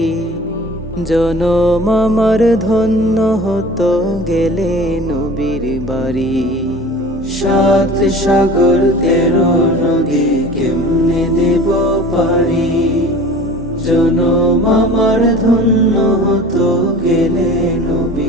জনম আমার ধন্য হতো গেলে নবীর বাড়ি। সাত সাগর 13 নদী কেমনে দেব পারি, জনম আমার ধন্য হতো গেলে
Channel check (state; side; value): normal; both; correlation 0.41